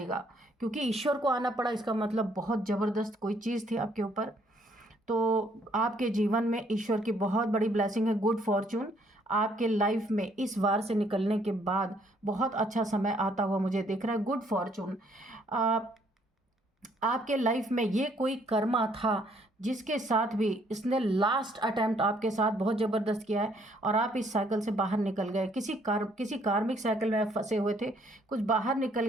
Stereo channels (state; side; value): normal; both; correlation 0.66